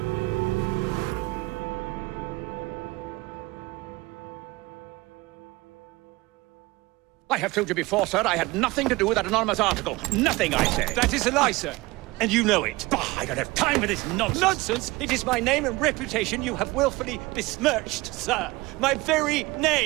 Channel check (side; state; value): left; quieter; 21.7 dB